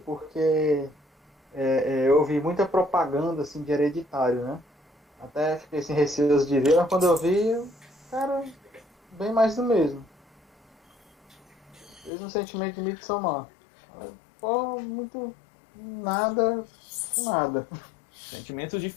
porque eu ouvi muita propaganda assim, de Hereditário, né? Até fiquei sem receio de ver, mas quando eu vi, cara, bem mais do mesmo. Mesmo sentimento de Midsommar. Pô, muito... nada. Sentimentos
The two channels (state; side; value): drops out; right; at 12.1 s